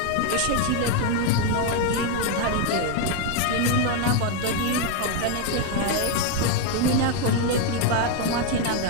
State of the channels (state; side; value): different; both; correlation 0.01